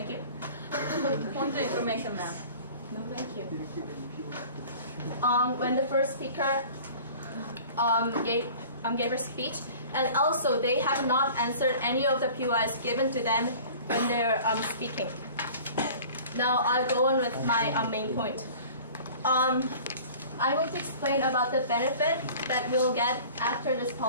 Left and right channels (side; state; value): both; inverted; correlation -0.44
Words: you. Point of information, ma'am. No, thank you. When the first speaker gave her speech, and also they have not answered any of the POIs given to them when they're speaking. Now I'll go on with my main point. I'm going to explain about the benefit that we'll get after this